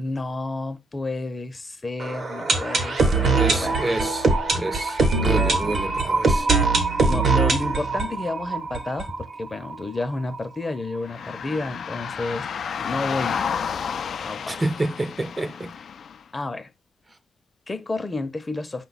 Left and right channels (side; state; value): both; normal; correlation 0.73